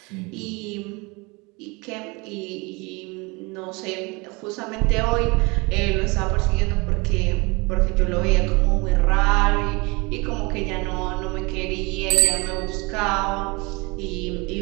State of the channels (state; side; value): quieter; left; 26.9 dB